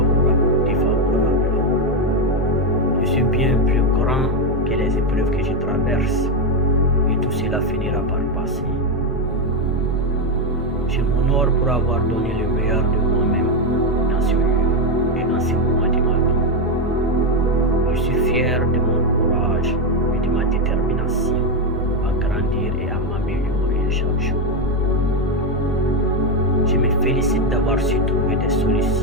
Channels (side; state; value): both; normal; correlation 0.07